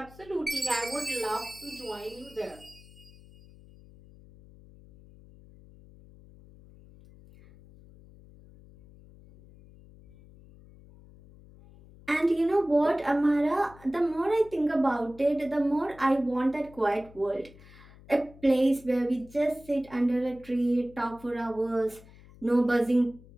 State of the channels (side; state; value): left; noise; hum, 22 dB below the sound